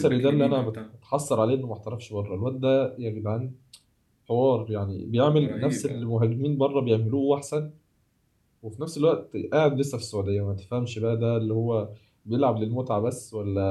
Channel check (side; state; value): both; identical; correlation 1.00